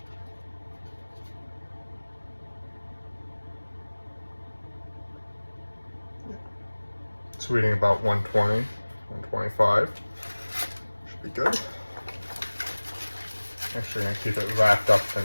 It's reading about 120, 125. Should be good. Actually, I'm going to keep it wrapped up for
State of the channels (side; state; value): both; inverted; correlation -1.00